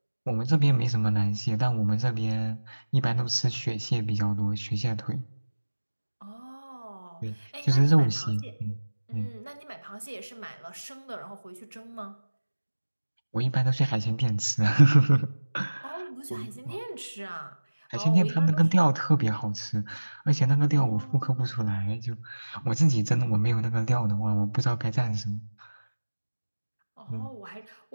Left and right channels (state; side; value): inverted; both; correlation -1.00